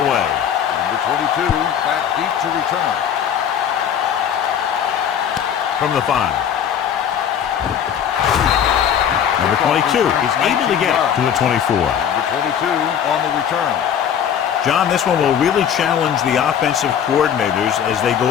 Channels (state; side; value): quieter; right; 8.7 dB